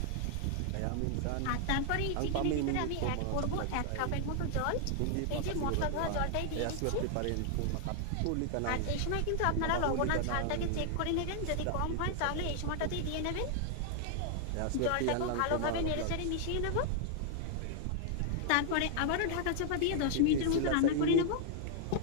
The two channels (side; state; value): both; different; correlation 0.00